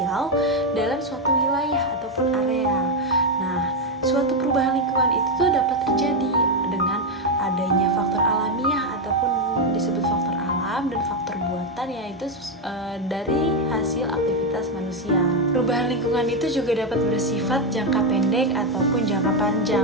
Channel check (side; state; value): both; normal; correlation 0.06